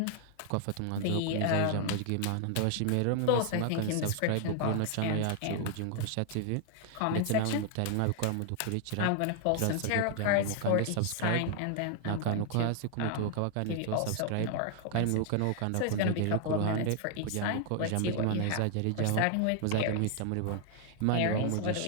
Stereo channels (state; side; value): different; both; correlation 0.00